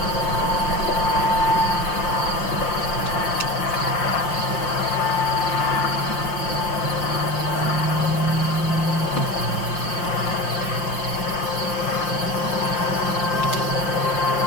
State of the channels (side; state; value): right; late; 5.7 ms